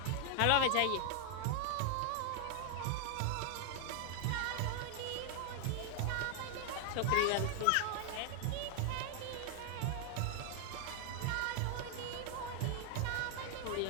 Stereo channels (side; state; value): both; different; correlation 0.00